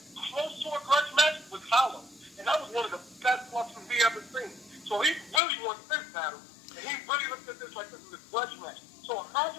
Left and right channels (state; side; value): drops out; right; at 5.4 s